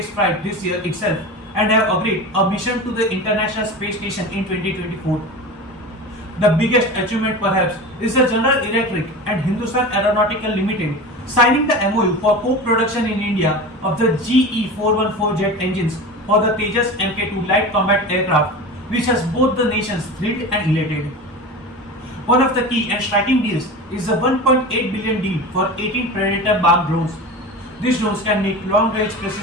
flight this year itself and have agreed a mission to the International Space Station in 2024. The biggest achievement perhaps is the General Electric and Hindustan Aeronautical Limited signing the MOU for co-production in India of the GE414 jet engines for the Tejas Mk2 light combat aircraft, which has both the nations thrilled and elated. One of the key and striking deals is the $1.8 billion deal for 18 Predator bomb drones. These drones can make long-range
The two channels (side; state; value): both; normal; correlation 0.30